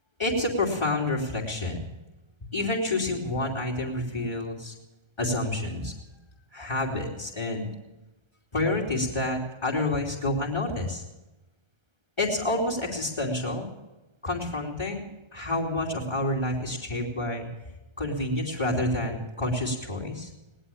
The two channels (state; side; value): late; left; 1.2 ms